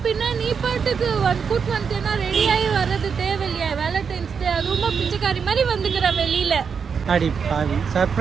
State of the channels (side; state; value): left; quieter; 6.3 dB